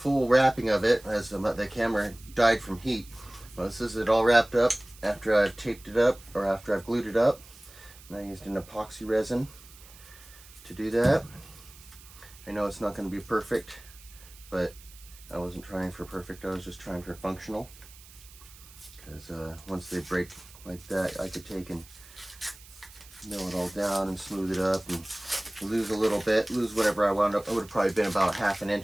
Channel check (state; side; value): noise; right; hiss, 21 dB below the sound